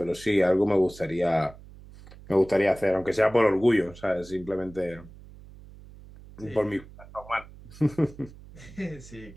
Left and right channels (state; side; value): noise; right; hum, 19 dB below the sound